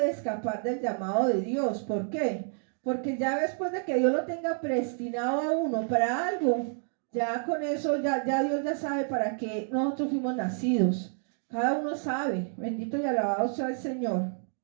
escapar del llamado de Dios. ¿Por qué? Porque ya después de que Dios lo tenga predestinado a uno para algo, ya con eso, ya Dios ya sabe para qué nosotros fuimos nacidos. Cada uno sabe. Bendito y alabado sea el Señor.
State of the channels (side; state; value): left; silent; 58 dB below the other